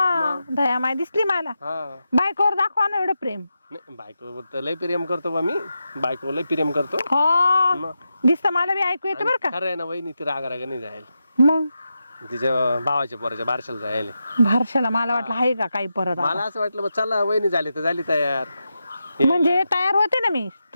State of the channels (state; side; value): inverted; both; correlation -0.88